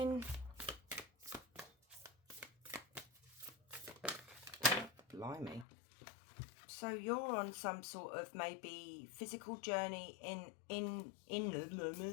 Blimey. So you're on some sort of maybe physical journey in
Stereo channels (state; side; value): drops out; right; at 5.7 s